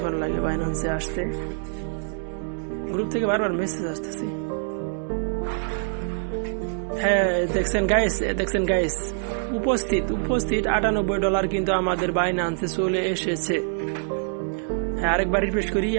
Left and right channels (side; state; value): left; silent; digital silence